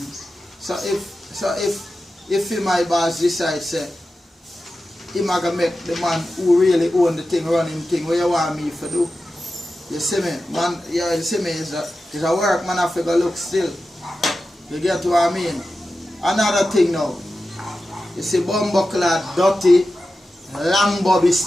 So if he my boss decide say he gonna make the man who really own the thing run him thing, what you want me to do? You see me, man, yeah, you see me, it's a work man have to go look still. You get what I mean? Another thing now. You see Bumbleclad, Dirty, Long Bobby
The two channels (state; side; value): normal; both; correlation 0.93